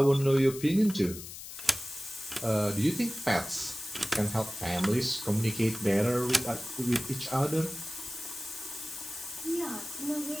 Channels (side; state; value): left; noise; hiss, 11 dB below the sound